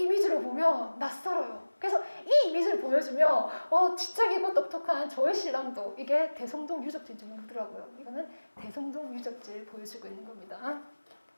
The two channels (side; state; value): both; inverted; correlation -1.00